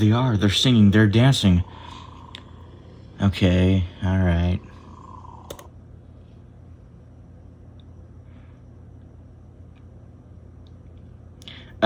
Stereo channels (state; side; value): identical; both; correlation 1.00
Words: are. They're singing, they're dancing. Okay, alright.